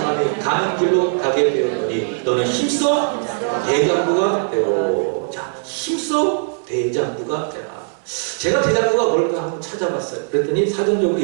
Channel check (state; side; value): silent; left; 64 dB below the other